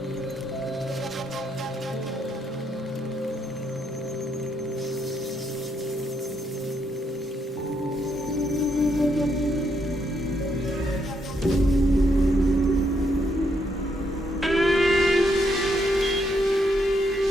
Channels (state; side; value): normal; both; correlation 0.76